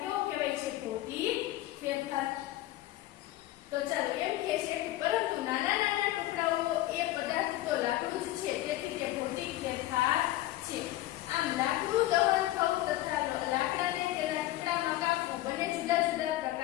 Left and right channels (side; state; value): right; quieter; 15.7 dB